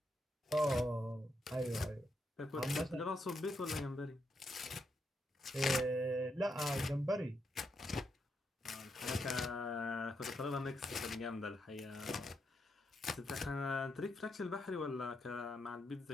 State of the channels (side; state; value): both; normal; correlation 0.81